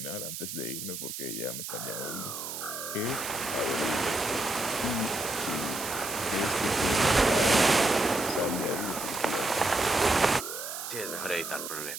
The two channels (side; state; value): right; noise; hiss, 7 dB below the sound